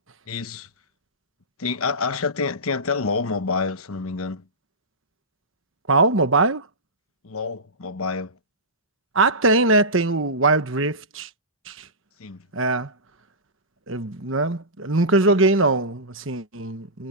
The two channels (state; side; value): normal; both; correlation -0.18